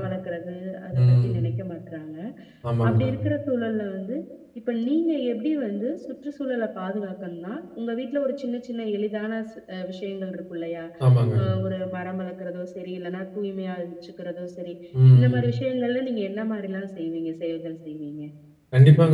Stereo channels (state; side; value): identical; both; correlation 1.00